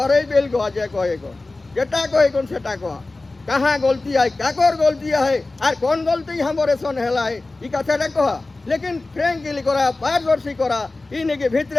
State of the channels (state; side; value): quieter; right; 3.2 dB